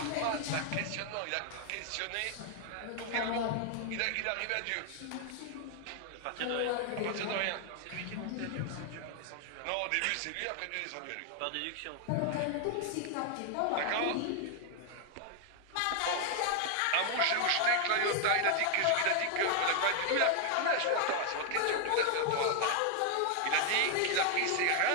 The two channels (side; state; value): both; different; correlation 0.00